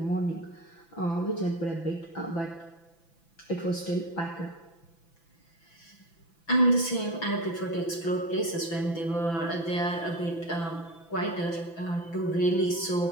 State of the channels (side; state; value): right; late; 6.0 ms